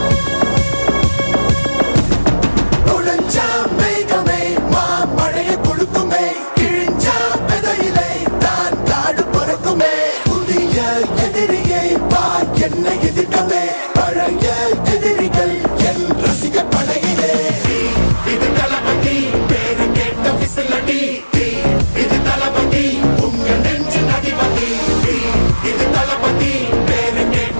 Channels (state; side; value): inverted; both; correlation -1.00